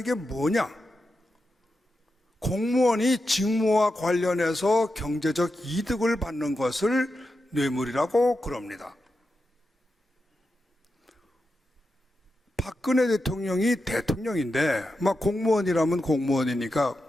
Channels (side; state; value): both; normal; correlation 0.89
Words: 게 뭐냐? 공무원이 직무와 관련해서 경제적 이득을 받는 것을 뇌물이라고 그럽니다. 박근혜 대통령이 대통령인데 막 공무원이라면 공무원이니까